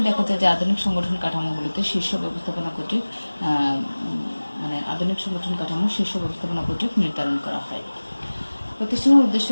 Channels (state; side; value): inverted; both; correlation -1.00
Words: দেখা যায় যে আধুনিক সংগঠন কাঠামোগুলিতে শীর্ষ ব্যবস্থাপনা কর্তৃক নির্ধারণ করা হয়। প্রতিষ্ঠানের